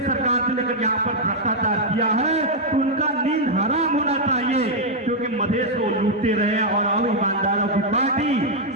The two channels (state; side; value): normal; both; correlation -0.03